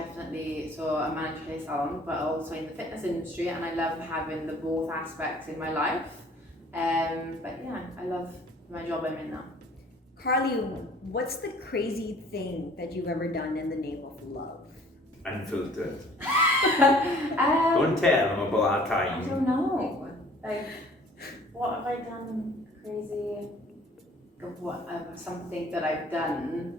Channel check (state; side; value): normal; both; correlation 0.53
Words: so I manage a salon, but also in the fitness industry, and I love having the both aspects in my life. But yeah, I love my job I'm in now. Carly, what's the crazy thing that you've ever done in the name of love? Unfiltered. Don't tell them about our I time. don't know. Like, what have I done crazy? What something that I've